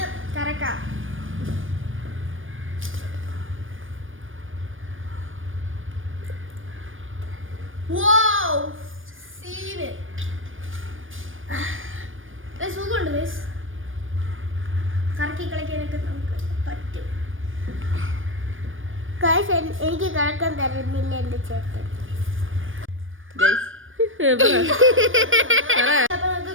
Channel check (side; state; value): left; late; 0.58 ms